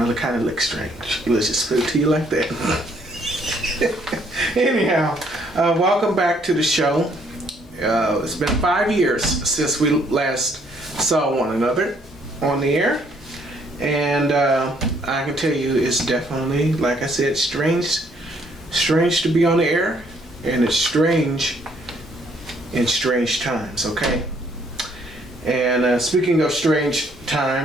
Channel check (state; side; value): normal; both; correlation 0.66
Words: kind of look strange. Let's just put it to you like that. Anyhow, welcome back to the show. It's been 5 years since we last saw one another on the air. And I can tell you it's definitely, like I said, strange to be on the air. And it's strange in strange times, okay? And speaking of strange